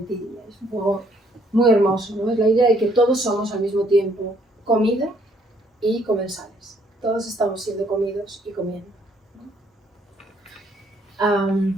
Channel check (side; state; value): both; normal; correlation 0.66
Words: Es un juego muy hermoso, ¿no? Es la idea de que todos somos al mismo tiempo comida y comensales. Todos estamos siendo comidos y comiendo, ¿no?